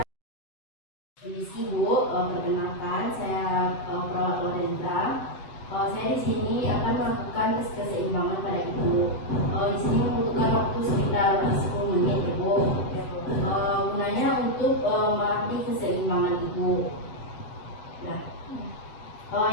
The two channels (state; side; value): late; right; 7.7 ms